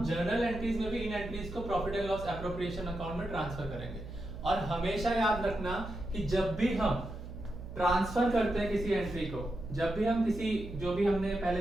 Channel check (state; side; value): noise; right; hum, 11 dB below the sound